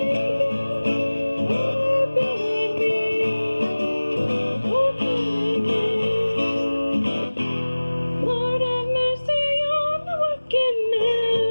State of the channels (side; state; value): both; inverted; correlation -1.00